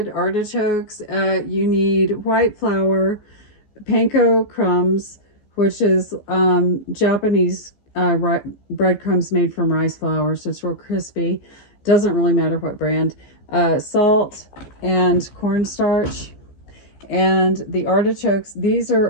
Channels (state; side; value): late; right; 15 ms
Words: artichokes, you need white flour, panko crumbs, which is Japanese breadcrumbs made from rice flour, so it's real crispy. Doesn't really matter what brand. Salt and cornstarch. And the artichokes, these